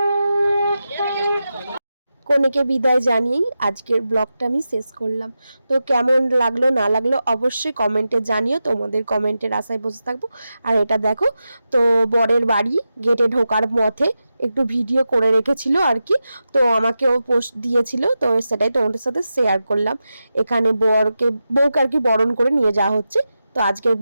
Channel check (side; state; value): both; inverted; correlation -0.91